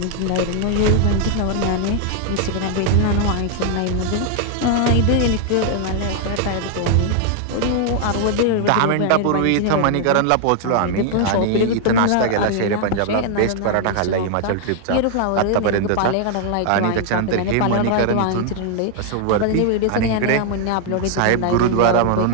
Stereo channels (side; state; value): both; different; correlation 0.00